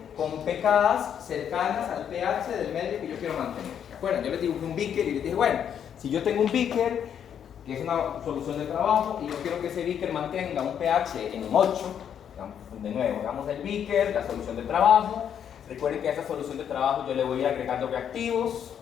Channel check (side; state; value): right; quieter; 8.7 dB